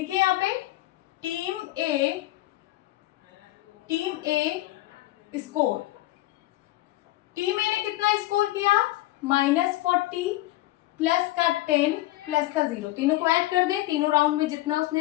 यहाँ पे टीम ए स्कोर, टीम ए ने कितना स्कोर किया, -40 प्लस का 10 प्लस का 0, तीनों को ऐड कर दें, तीनों राउंड में जितना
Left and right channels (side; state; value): right; quieter; 17.4 dB